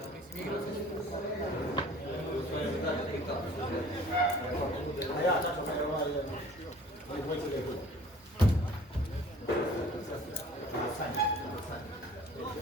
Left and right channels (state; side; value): normal; both; correlation 0.49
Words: A ja, tako me ovaj dvojci rekao.